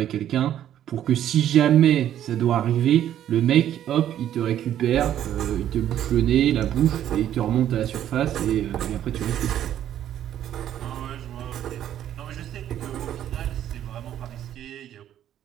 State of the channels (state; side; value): quieter; left; 11.1 dB